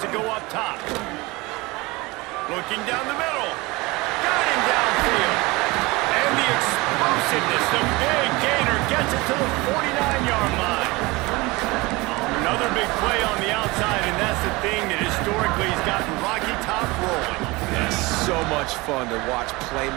to go up top. Looking down the middle. Got him downfield. And the explosiveness, the big gainer gets it to the 49-yard line. Another big play on the outside, and that's the thing that historically has gotten Rocky Top rolling. Yes. so much fun to watch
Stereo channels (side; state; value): left; quieter; 23.0 dB